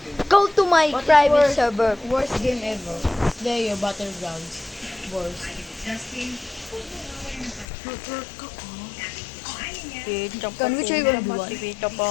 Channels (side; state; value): right; drops out; at 7.7 s